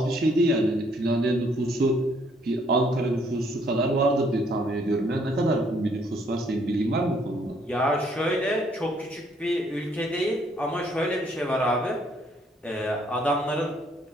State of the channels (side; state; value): both; normal; correlation 0.66